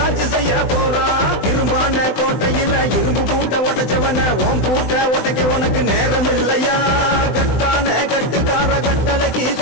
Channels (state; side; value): late; right; 20 ms